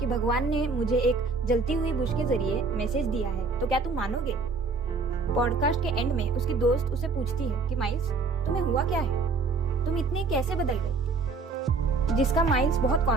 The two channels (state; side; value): quieter; left; 4.2 dB